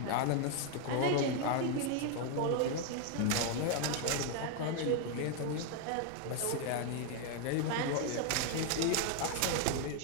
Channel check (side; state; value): both; different; correlation 0.01